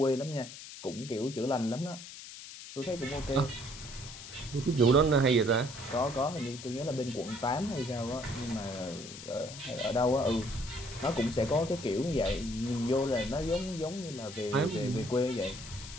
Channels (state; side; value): noise; left; hiss, 13 dB below the sound